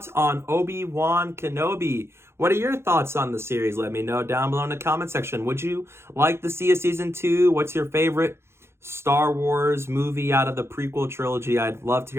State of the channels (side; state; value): left; late; 0.12 ms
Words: on Obi-Wan Kenobi. What are your thoughts on the series? Let me know down below in the comment section. Would you like to see a season 2? What's your favorite Star Wars movie out of the prequel trilogy? I'd love to